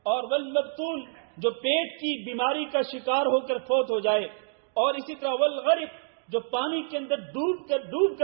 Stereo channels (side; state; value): left; silent; digital silence